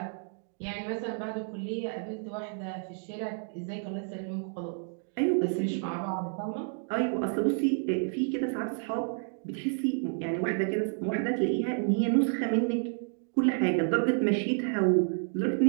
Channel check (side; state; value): left; silent; 58 dB below the other